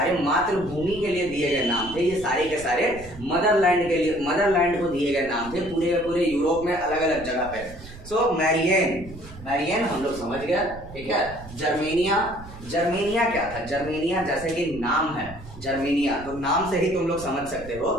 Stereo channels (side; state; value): right; noise; rumble, 16 dB below the sound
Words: मातृभूमि के लिए दिए गए नाम थे। ये सारे के सारे मदरलैंड के लिए, मदरलैंड को दिए गए नाम थे पूरे के पूरे यूरोप में अलग अलग जगह पे। सो मैरियन हम लोग समझ गया, ठीक है। जर्मेनिया क्या था, जर्मेनिया जैसे कि नाम है जर्मेनिया, तो नाम से ही तुम लोग समझ सकते हो